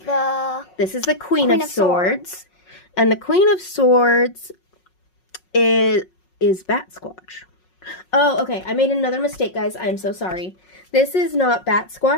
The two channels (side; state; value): right; late; 5.5 ms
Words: This is the Queen of Swords. And the Queen of Swords is Bat Squatch. Oh, okay. I made another mistake, guys. I'm so sorry. This is not Bat